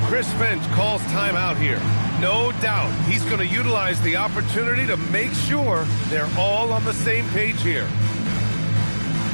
Chris Finch calls timeout here. No doubt he's going to utilize the opportunity to make sure they're all on the same page here.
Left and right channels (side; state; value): both; inverted; correlation -1.00